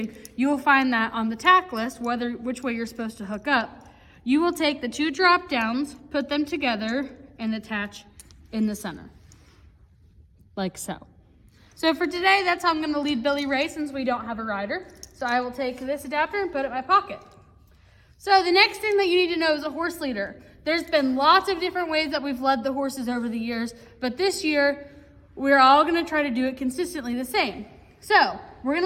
you will find that on the tack list, which way you're supposed to hook up. You will take the two drop downs, put them together, and attach in the center, like so. So for today, that's how I'm going to lead Billy Ray since we don't have a rider. So I will take this adapter and put it in my pocket. So the next thing that you need to know is a horse leader. There's been lots of different ways that we've led the horses over the years, but this year, we're all gonna try to do it consistently the same. So we're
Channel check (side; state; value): both; identical; correlation 1.00